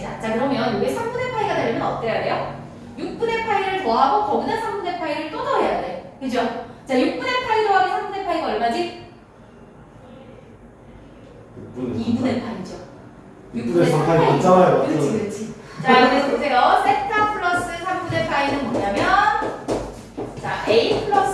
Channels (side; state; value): both; identical; correlation 1.00